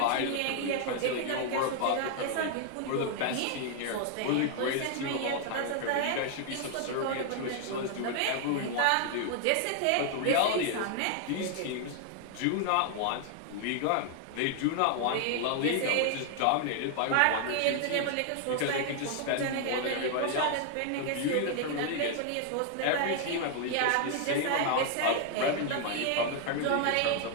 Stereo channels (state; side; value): different; both; correlation 0.00